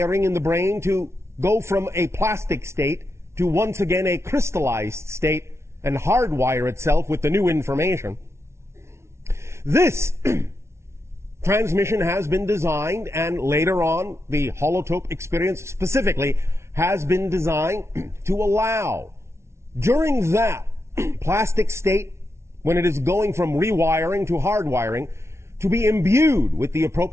in the brain to go from a plastic state to once again a crystallized state and hardwire itself with the new information. This transmission has been designed, and later on the holotope experience specifically has been designed to allow, during that plastic state, when it is going from rewiring to hardwiring, to be imbued with the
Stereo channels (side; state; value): left; late; 0.13 ms